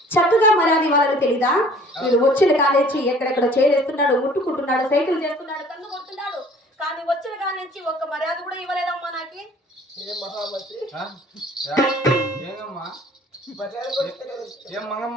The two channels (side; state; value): both; normal; correlation 0.52